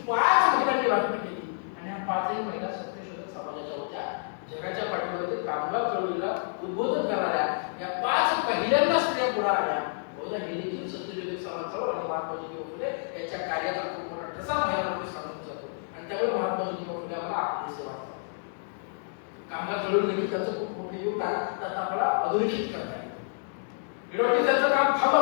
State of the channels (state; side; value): silent; right; digital silence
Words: 5 महिलांनी भाषण केली आणि ह्या 5ही महिला सत्यशोधक समाजाच्या होत्या. जगाच्या पाठीवर कामगार चळवळीला उद्बोधन करणाऱ्या या 5 पहिल्यांदा स्त्रिया पुढे आल्या. बहुधा हे देखील सत्यशोधक समाजावर आणि महात्मा ज्योतिबा फुले यांच्या कार्याचा खूप मोठा ठसा महिलांमध्ये सांगून जातो आणि त्यामुळे महात्मा ज्योतिबा फुले आम्हाला आपले सेवा कामगार चळवळीनिमित्त त्यांचं खूप मोठे योगदान त्यात आपल्याला अधोरेखित करता येतं. एवढं त्यांचं काम